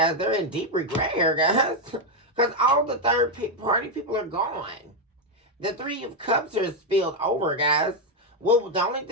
they're in deep regret here, guys. Because all the third-party people are gone. The Three of Cups are spilled over, guys. Well, the only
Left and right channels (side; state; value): both; normal; correlation 0.03